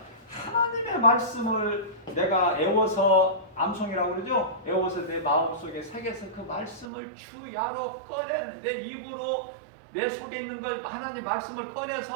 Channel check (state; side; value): drops out; left; at 6.9 s